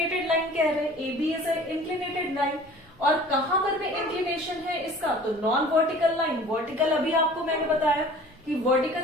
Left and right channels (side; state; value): both; normal; correlation 0.46